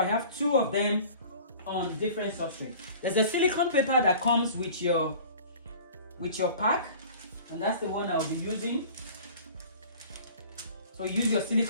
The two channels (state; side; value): inverted; both; correlation -0.44